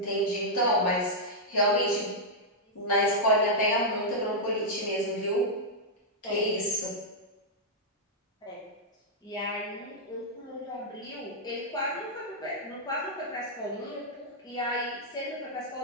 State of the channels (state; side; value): normal; both; correlation -0.06